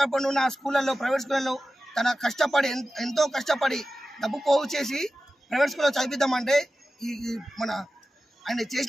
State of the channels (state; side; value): normal; both; correlation 0.94